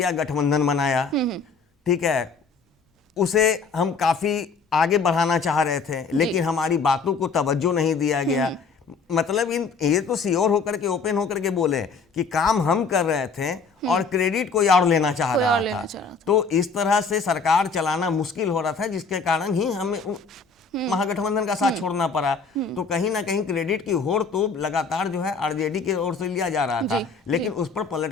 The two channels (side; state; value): right; quieter; 4.7 dB